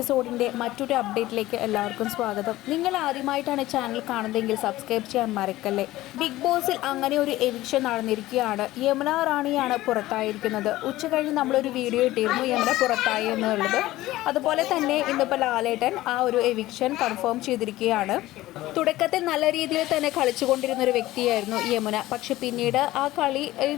മറ്റൊരു അപ്ഡേറ്റിലേക്ക് എല്ലാവർക്കും സ്വാഗതം. നിങ്ങൾ ആദ്യമായിട്ടാണ് ചാനൽ കാണുന്നതെങ്കിൽ സബ്സ്ക്രൈബ് ചെയ്യാൻ മറക്കല്ലേ. ബിഗ് ബോസിൽ അങ്ങനെ ഒരു എവിക്ഷൻ നടന്നിരിക്കുകയാണ്. യമുന റാണിയാണ് പുറത്തായിരിക്കുന്നത്. ഉച്ച കഴിഞ്ഞ് നമ്മളൊരു വീഡിയോ ഇട്ടിരുന്നു യമുന പുറത്തായി എന്നുള്ളത്. അതുപോലെ തന്നെ ഇന്നിപ്പോൾ ലാലേട്ടൻ ആ ഒരു എവിക്ഷൻ കൺഫേം ചെയ്തിരിക്കുകയാണ്. തുടക്കത്തിൽ നല്ല രീതിയിൽ തന്നെ കളിച്ചുകൊണ്ടിരുന്ന ഒരു വ്യക്തിയായിരുന്നു യമുന. പക്ഷെ പിന്നീട് ആ കളിയിൽ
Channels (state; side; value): quieter; right; 16.7 dB